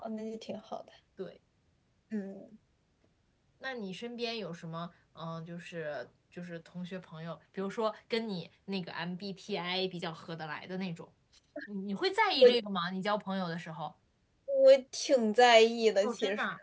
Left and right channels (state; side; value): identical; both; correlation 1.00